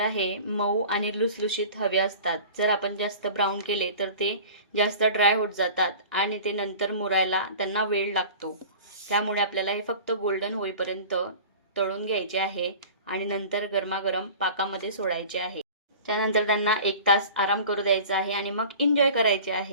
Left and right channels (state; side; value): inverted; both; correlation -0.40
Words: हे मऊ आणि लुसलुशीत हवे असतात. जर आपण जास्त ब्राऊन केले तर ते जास्त ड्राय होत जातात आणि ते नंतर मुरायला त्यांना वेळ लागतो. त्यामुळे आपल्याला हे फक्त गोल्डन होईपर्यंत तळून घ्यायचे आहे आणि नंतर गरमागरम पाकामध्ये सोडायचे आहे. त्यानंतर त्यांना 1 तास आराम करू द्यायचा आहे आणि मग एन्जॉय करायचे